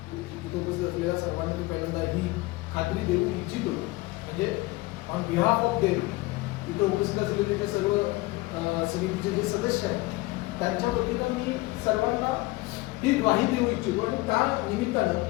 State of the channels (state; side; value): quieter; right; 21.1 dB